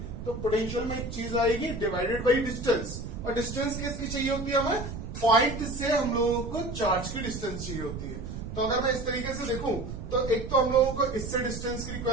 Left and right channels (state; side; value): noise; right; rumble, 8 dB below the sound